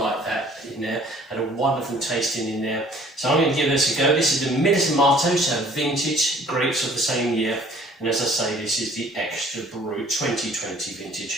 that in there. Had a wonderful tasting in there. So I'm going to give this a go. This is the Milismato, so vintage grapes of the same year. And as I say, this is the Extra Brut 2020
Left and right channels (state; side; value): normal; both; correlation 0.54